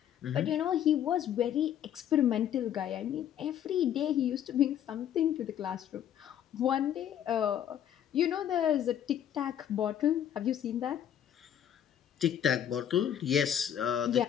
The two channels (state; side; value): quieter; right; 10.1 dB